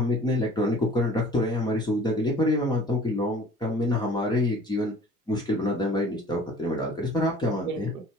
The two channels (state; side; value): normal; both; correlation 0.48